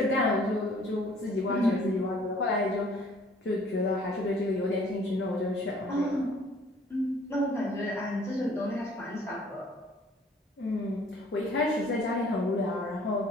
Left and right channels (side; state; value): both; normal; correlation 0.56